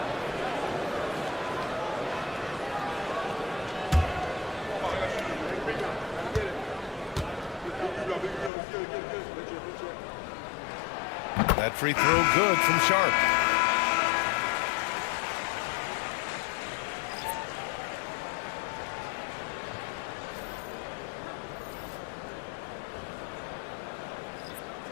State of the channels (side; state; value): right; drops out; at 8.5 s